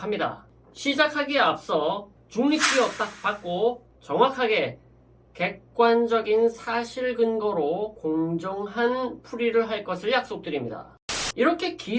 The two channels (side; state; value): both; identical; correlation 1.00